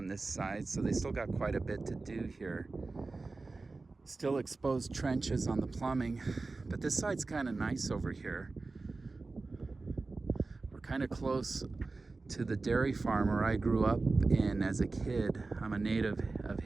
this side, so they still got quite a bit to do here. Still exposed trenches on the plumbing, but this side's kind of nice over here. We're kind of close to the dairy farm where I grew up in as a kid. I'm a native of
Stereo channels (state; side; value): quieter; left; 3.6 dB